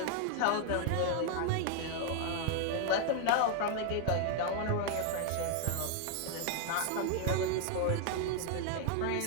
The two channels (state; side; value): different; both; correlation 0.00